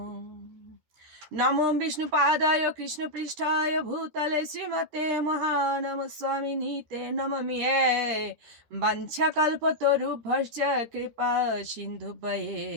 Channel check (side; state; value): left; late; 13 ms